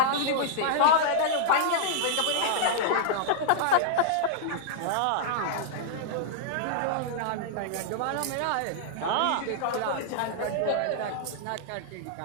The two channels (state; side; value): different; both; correlation -0.01